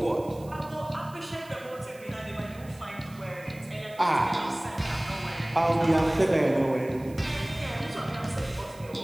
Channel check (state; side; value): noise; right; hiss, 24 dB below the sound